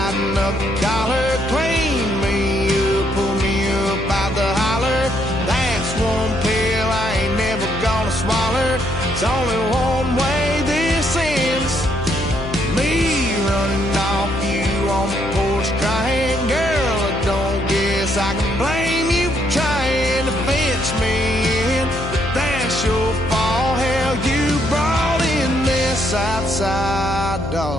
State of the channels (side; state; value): left; noise; hum, 8 dB below the sound